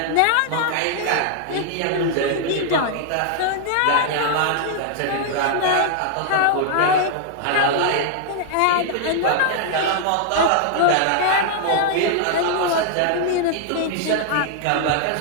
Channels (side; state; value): both; different; correlation -0.01